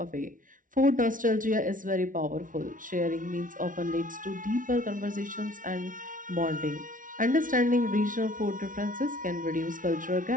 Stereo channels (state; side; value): late; left; 0.38 ms